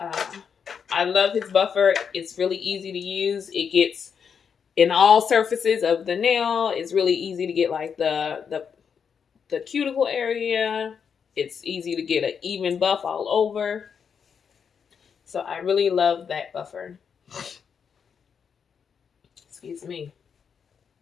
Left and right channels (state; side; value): quieter; right; 6.8 dB